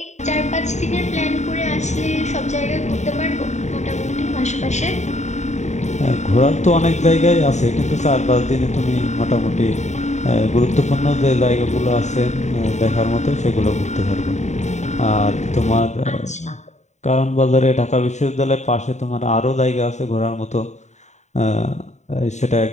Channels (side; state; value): right; late; 0.34 ms